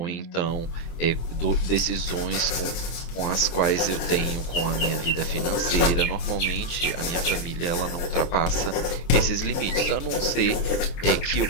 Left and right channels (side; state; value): right; late; 23 ms